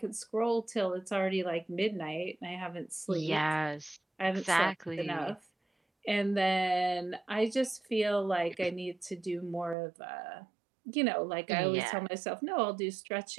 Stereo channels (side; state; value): left; drops out; at 9.8 s